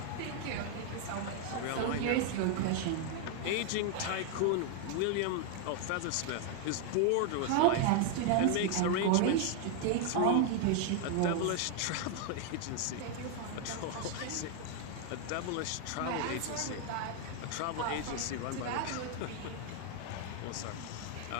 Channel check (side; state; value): both; different; correlation 0.00